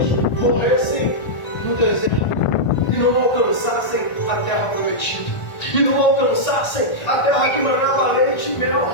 morressem no deserto e não alcançassem a terra prometida, e não alcançassem a terra que manava leite e mel,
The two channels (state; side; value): late; right; 1.4 ms